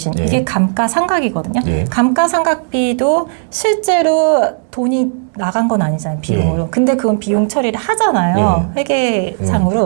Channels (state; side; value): silent; left; digital silence